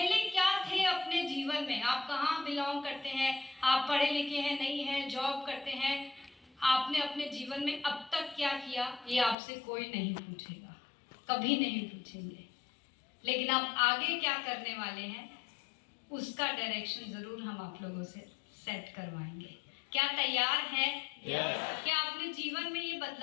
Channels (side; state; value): right; drops out; at 9.3 s